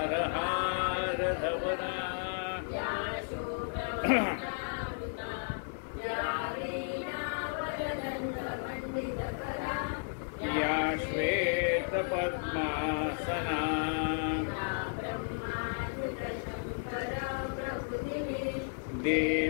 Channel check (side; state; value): right; silent; digital silence